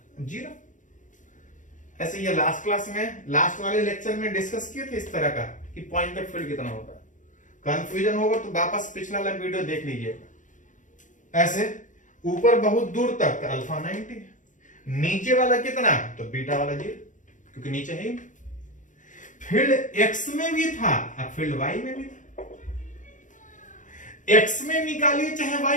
0, ऐसे ये लास्ट क्लास में, लास्ट वाले लेक्चर में डिस्कस किए थे इस तरह का कि पॉइंटर फील्ड कितना होता है। कंफ्यूजन होगा तो वापस पिछला वाला वीडियो देख लीजिएगा। ऐसे ऊपर बहुत दूर तक तो अल्फा 90, नीचे वाला कितना तो बीटा वाला 0, क्योंकि नीचे है। फील्ड एक्स में भी था और फील्ड वाई में भी था। एक्स में निकालिए चाहे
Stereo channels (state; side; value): late; right; 0.37 ms